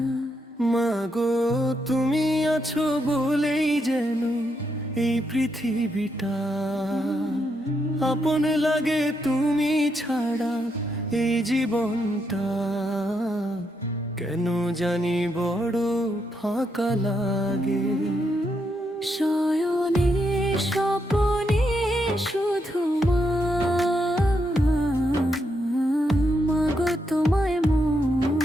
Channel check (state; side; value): normal; both; correlation 0.80